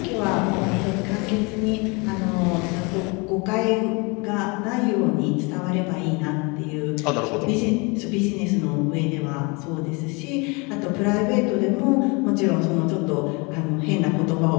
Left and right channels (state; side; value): quieter; right; 29.3 dB